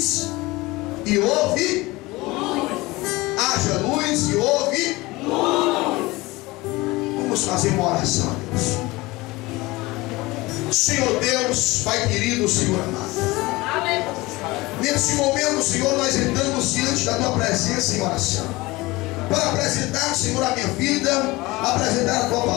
e houve luz. Haja luz e houve luz. Vamos fazer uma oração, Deus. Senhor Deus, Pai querido, Senhor amado, amém. Nesse momento, Senhor, nós entramos diante da Tua presença em oração, para apresentar, Senhor, a minha vida, apresentar a Tua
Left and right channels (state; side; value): quieter; right; 21.4 dB